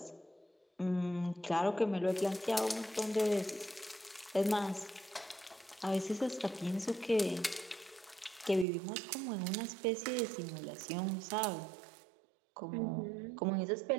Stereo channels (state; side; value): drops out; left; at 8.7 s